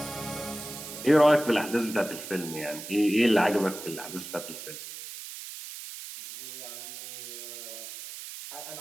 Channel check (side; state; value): right; noise; hiss, 11 dB below the sound